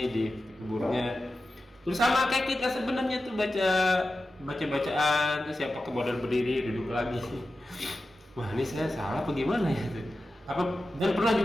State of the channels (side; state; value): both; normal; correlation 0.93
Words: di kuburnya. Terus sama kayak kita sebenarnya tuh bacaan terus siapa kemudian berdiri duduk lagi. Wah ini saya salah apa gimana ya tuh? Dan pernah